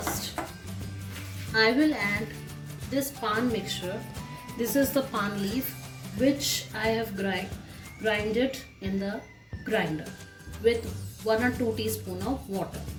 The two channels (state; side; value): identical; both; correlation 1.00